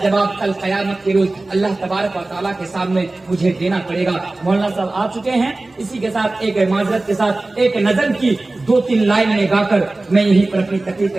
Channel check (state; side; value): quieter; left; 3.0 dB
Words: जवाब कल क़यामत के रोज अल्लाह तबारक व तआला के सामने मुझे देना पड़ेगा। मौलाना साहब आ चुके हैं। इसी के साथ एक माजरत के साथ एक नज़म की 2-3 लाइनें गाकर मैं यहीं पर अपनी तकरीर